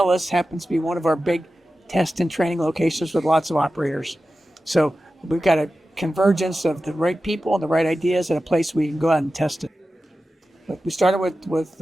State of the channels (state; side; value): normal; both; correlation 0.93